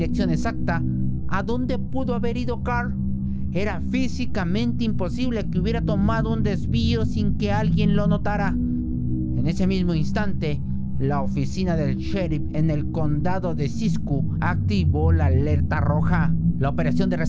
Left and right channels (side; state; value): both; identical; correlation 1.00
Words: exacta, ¿a dónde pudo haber ido Carl? Era físicamente imposible que hubiera tomado un desvío sin que alguien lo notara. En ese mismo instante, la oficina del sheriff en el condado de Siskiyou activó la alerta roja. La operación de